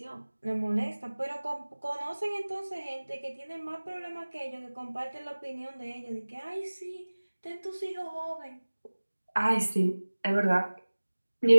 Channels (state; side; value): inverted; both; correlation -1.00